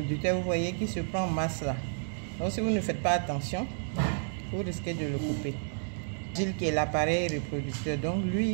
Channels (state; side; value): silent; left; 57 dB below the other